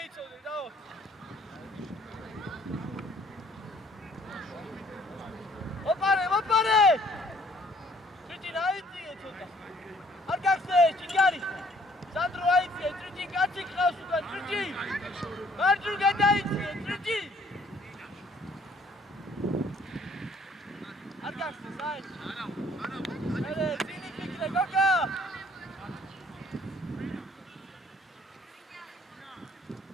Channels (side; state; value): both; normal; correlation 0.61